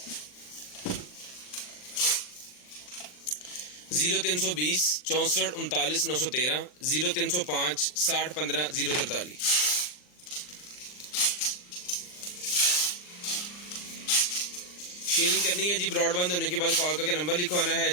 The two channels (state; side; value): late; right; 39 ms